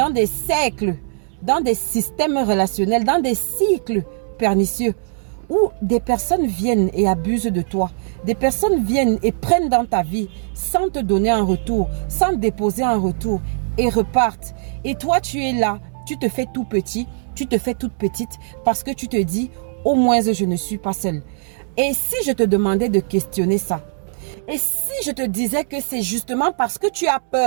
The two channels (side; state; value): left; silent; digital silence